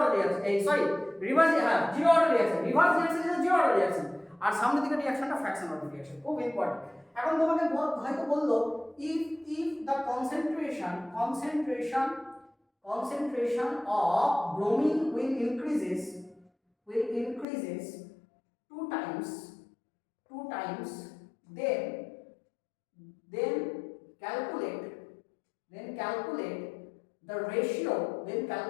reaction, sorry reverse, হ্যাঁ zero order reaction, reverse reaction is the zero order reaction, আর সামনের দিকে রিঅ্যাকশনটা fraction order reaction, খুব ইম্পর্টেন্ট। এখন তোমাকে হয়তো বললো if the concentration of bromine will increases two times, then calculate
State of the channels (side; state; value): right; drops out; at 17.4 s